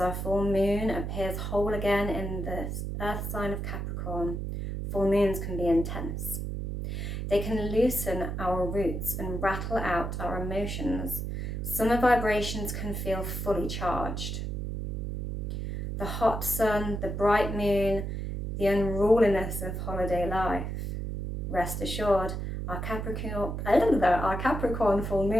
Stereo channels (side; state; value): right; noise; hum, 4 dB below the sound